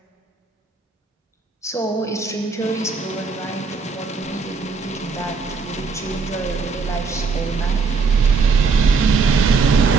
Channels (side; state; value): left; quieter; 4.8 dB